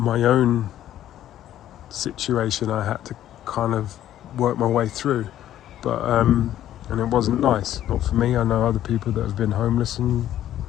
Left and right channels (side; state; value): right; quieter; 12.1 dB